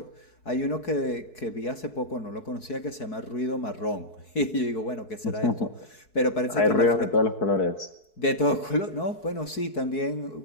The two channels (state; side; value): late; right; 4.7 ms